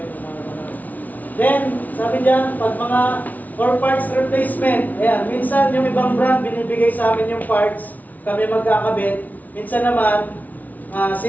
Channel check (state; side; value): late; right; 0.076 ms